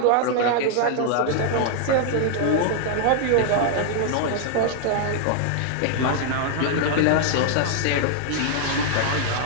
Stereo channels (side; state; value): both; different; correlation 0.00